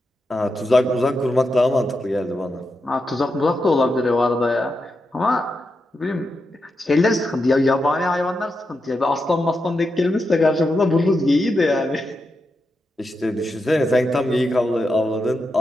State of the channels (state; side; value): normal; both; correlation 0.86